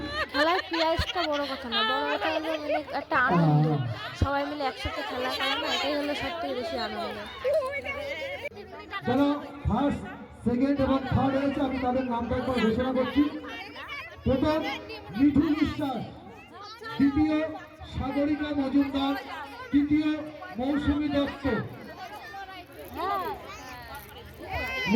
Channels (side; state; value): both; identical; correlation 1.00